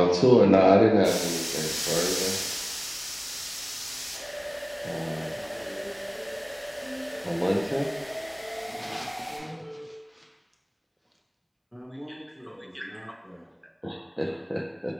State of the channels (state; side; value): identical; both; correlation 1.00